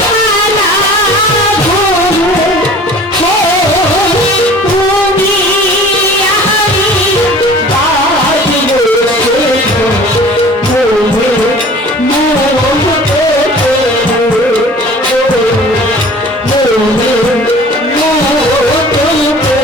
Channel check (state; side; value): normal; both; correlation 0.46